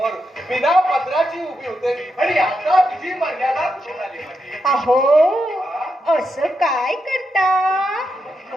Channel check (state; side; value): normal; both; correlation 0.85